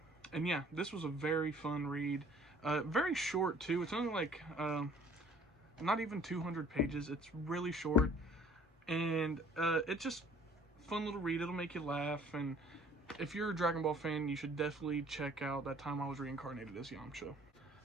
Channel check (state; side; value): normal; both; correlation 0.54